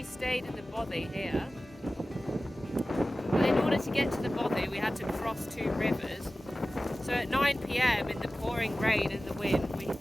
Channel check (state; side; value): normal; both; correlation 0.96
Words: stayed in the bothy here. But in order to get to the bothy, we had to cross 2 rivers. So at 9 PM in the pouring rain and the wind, we